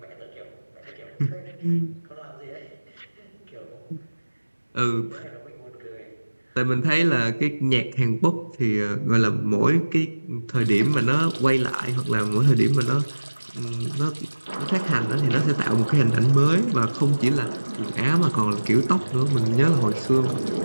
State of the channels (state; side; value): inverted; both; correlation -1.00